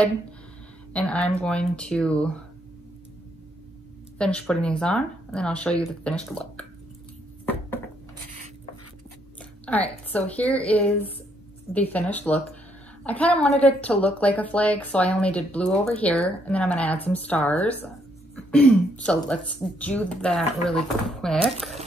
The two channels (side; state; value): both; normal; correlation 0.72